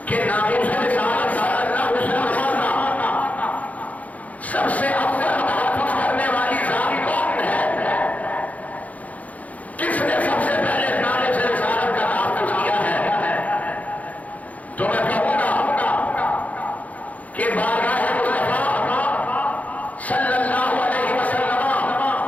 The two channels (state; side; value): late; right; 0.072 ms